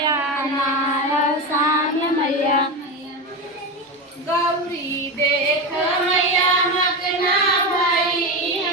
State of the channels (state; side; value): normal; both; correlation 0.18